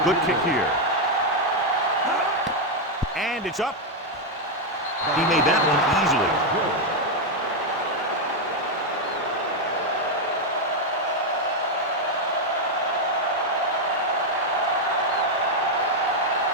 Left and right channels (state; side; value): normal; both; correlation 0.02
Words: good kick here. And it's up. He made that one easily.